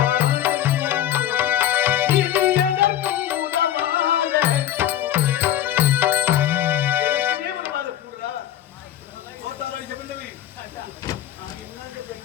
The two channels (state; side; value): quieter; right; 11.7 dB